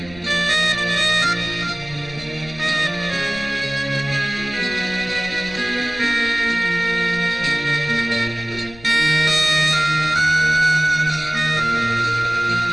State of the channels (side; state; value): left; noise; rumble, 18 dB below the sound